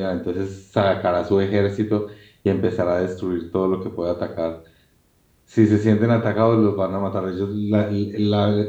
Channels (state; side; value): identical; both; correlation 1.00